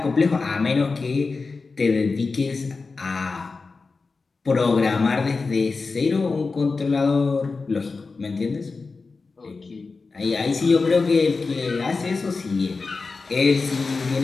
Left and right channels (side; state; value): right; quieter; 4.2 dB